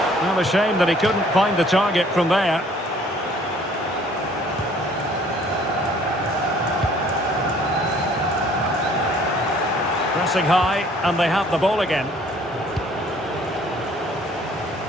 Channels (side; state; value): both; normal; correlation 0.57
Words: Well, a shame that he couldn't find the target from there. Pressing high, and they have the ball again.